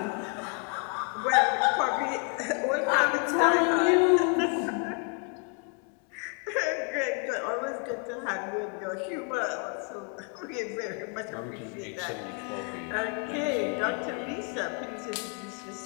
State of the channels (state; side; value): quieter; right; 36.9 dB